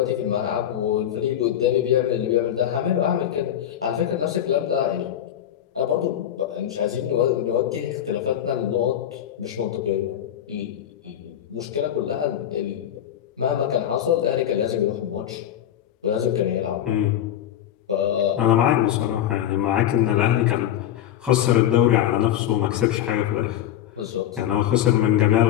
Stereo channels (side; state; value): right; quieter; 11.0 dB